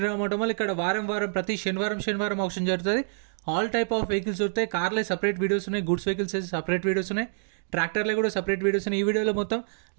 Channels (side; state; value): left; silent; digital silence